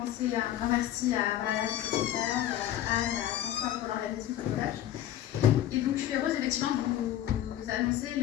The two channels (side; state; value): right; quieter; 12.2 dB